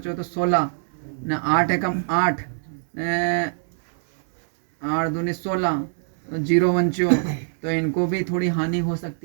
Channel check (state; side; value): silent; left; digital silence